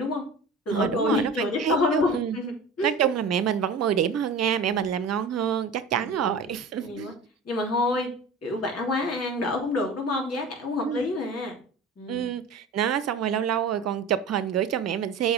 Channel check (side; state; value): left; quieter; 3.3 dB